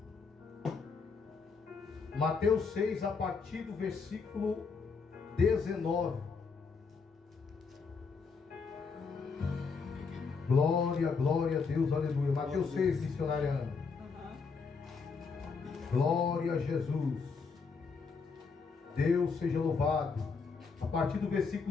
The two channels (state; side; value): quieter; right; 5.0 dB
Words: Mateus 6, a partir do versículo 19. Glória, glória a Deus, aleluia. Mateus 6, missionária Ana. Glória a Jesus. Deus seja louvado. A partir do